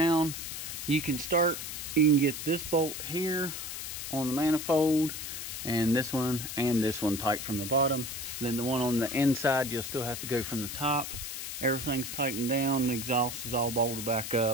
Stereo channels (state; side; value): noise; left; hiss, 6 dB below the sound